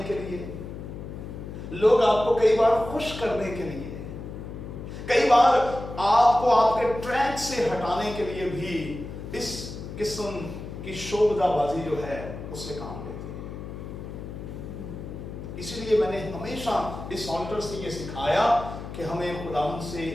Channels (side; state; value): left; noise; hum, 9 dB below the sound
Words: के लिए, लोग आपको कई बार खुश करने के लिए, कई बार आपको आपके ट्रैक से हटाने के लिए भी इस किस्म की शोबदाबाजी जो है उससे काम लेते हैं। इसीलिए मैंने हमेशा इस ऑल्टर से ये सिखाया कि हमें खुदावंद से